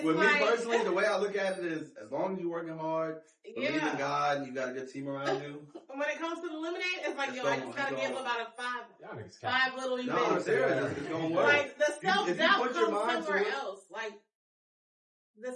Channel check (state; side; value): identical; both; correlation 1.00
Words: with like, me personally, the way I look at it is, as long as you're working hard, believe in yeah. God, and you got a good team around you. When it comes to the lemonade, it's like, yo, I just gotta give about five little events. No, I'm serious. It's gonna work. Like the self-doubt put your comes mind to somewhere it. else. Like